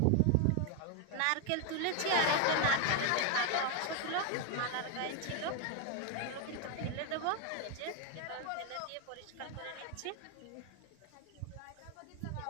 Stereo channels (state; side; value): different; both; correlation 0.01